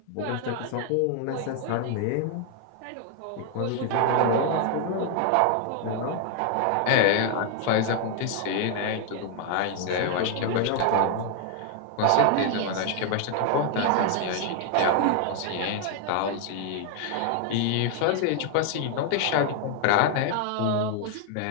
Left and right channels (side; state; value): both; different; correlation 0.00